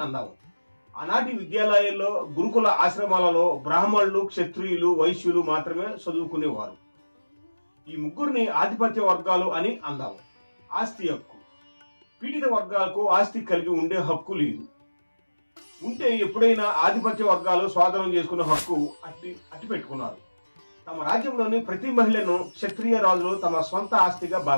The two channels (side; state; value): both; inverted; correlation -1.00